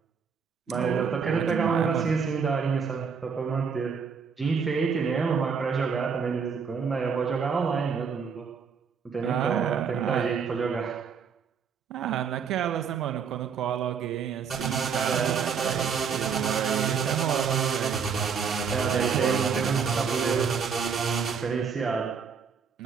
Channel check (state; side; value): quieter; left; 6.2 dB